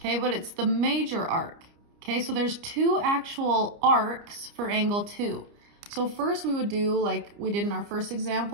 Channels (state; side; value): late; left; 29 ms